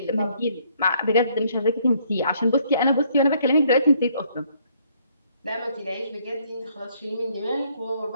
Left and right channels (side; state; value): both; inverted; correlation -0.67